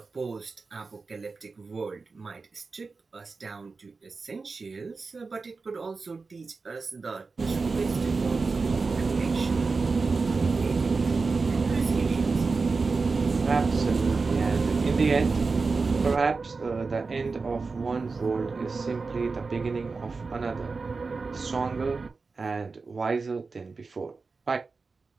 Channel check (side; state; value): left; quieter; 4.3 dB